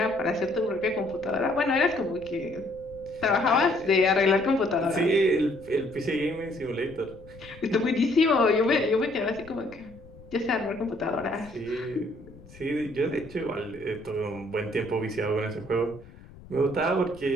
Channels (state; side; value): noise; left; rumble, 21 dB below the sound